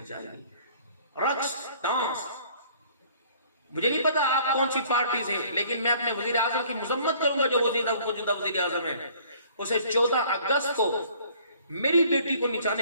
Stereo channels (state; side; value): inverted; both; correlation -0.56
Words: چاہیے. رقص ڈانس، مجھے نہیں پتا آپ کون سی پارٹی سے، لیکن میں اپنے وزیر اعظم کی مذمت کروں گا جو موجودہ وزیر اعظم ہے. اسے 14 اگست کو میری بیٹی کو